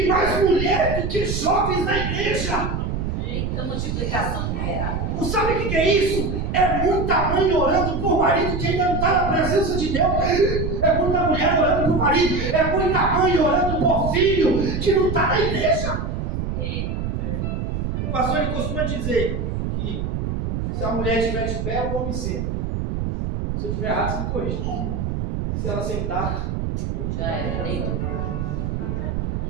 mais mulher do que jovens na igreja. Eita multiplicação numerável. Não sabe o que é isso? É muita mãe orando por marido que ainda não está na presença de Deus. É muita mulher orando por marido. É muita mãe orando por filho que não está na igreja. O pastor ele costuma dizer que se a mulher estiver de pé, o homem senta. Se eu estiver errado, você me corrige. E se ela sentar, Já era, deitou.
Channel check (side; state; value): right; noise; rumble, 2 dB below the sound